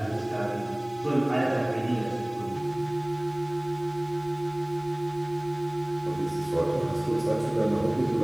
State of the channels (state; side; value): noise; left; hiss, 29 dB below the sound